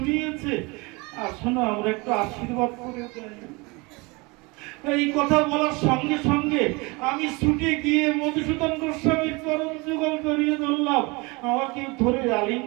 আসলে আমরা একটু আশীর্বাদ করে যাই। এই কথা বলার সঙ্গে সঙ্গে আমি ছুটে গিয়ে মধুসূদন গোস্বামীর চরণ আমাকে ধরে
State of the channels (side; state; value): left; quieter; 26.4 dB